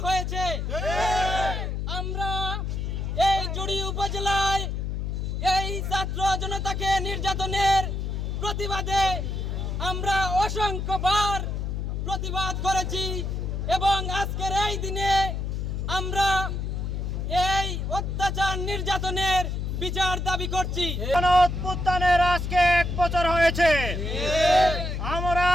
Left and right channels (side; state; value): left; noise; hum, 2 dB below the sound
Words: হয়েছে। আমরা এই জুড়ি উপজেলায় এই ছাত্র জনতাকে নির্যাতনের প্রতিবাদে আমরা অসংখ্যবার প্রতিবাদ করেছি এবং আজকের এই দিনে আমরা এই অত্যাচার নির্যাতনের বিচার দাবি করছি। গণঅভ্যুত্থানের আজকে 1 বছর হয়েছে। আমরা